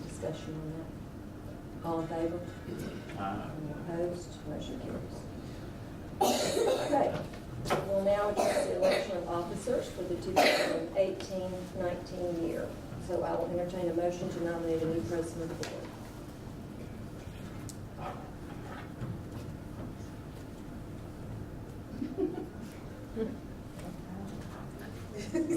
discussion on that? All in favor? Any opposed? Motion carries. Okay, we'll now address the election of officers for the 2018-19 year. So I will entertain a motion to nominate a new president of the board.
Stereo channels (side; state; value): both; identical; correlation 1.00